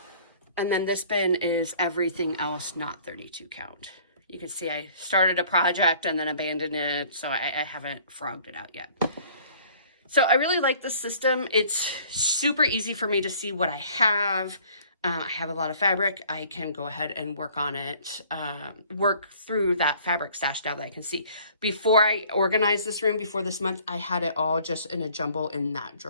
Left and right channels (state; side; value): inverted; both; correlation -0.54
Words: And then this bin is everything else not 32 count. You can see I started a project and then abandoned it, so I haven't frogged it out yet. So I really like this system. It's super easy for me to see what I have. I have a lot of fabric. I can go ahead and work on it, work through that fabric stash now that I can see. Before I organized this room, before this month, I had it all just in a jumble in that